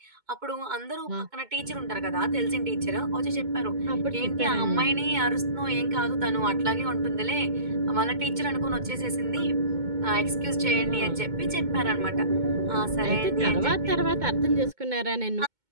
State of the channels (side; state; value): left; late; 2.2 ms